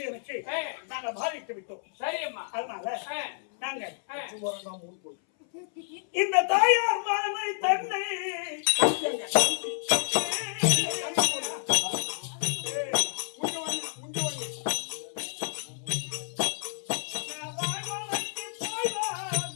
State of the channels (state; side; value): silent; right; 58 dB below the other